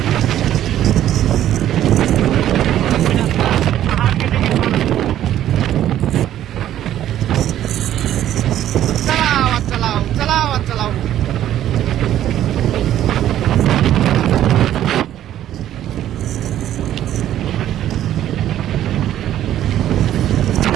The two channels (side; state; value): left; quieter; 12.0 dB